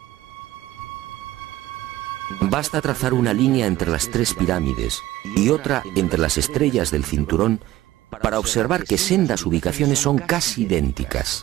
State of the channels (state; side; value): quieter; left; 15.5 dB